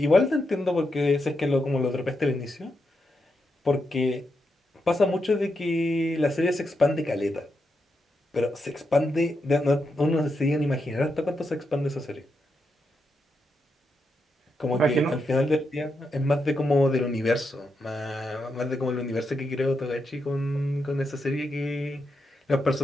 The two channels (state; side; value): normal; both; correlation 0.84